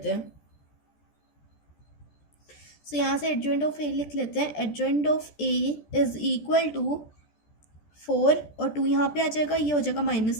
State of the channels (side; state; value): right; late; 14 ms